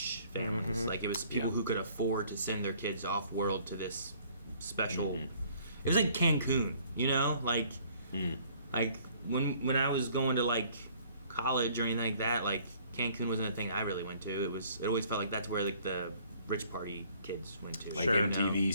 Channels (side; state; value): both; inverted; correlation -0.58